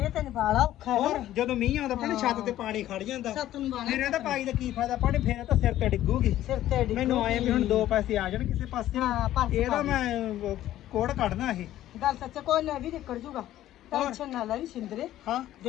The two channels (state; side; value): quieter; right; 13.4 dB